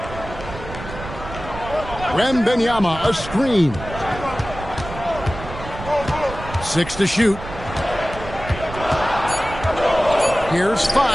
Wembanyama, a screen. 6 to shoot. Here's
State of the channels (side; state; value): right; noise; rumble, 11 dB below the sound